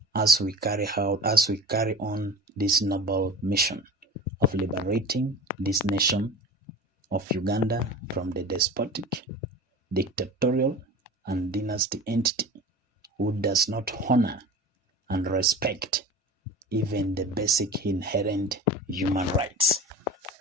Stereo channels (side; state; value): both; normal; correlation 0.36